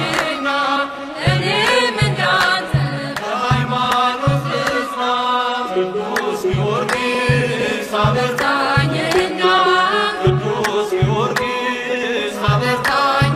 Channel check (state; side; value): identical; both; correlation 1.00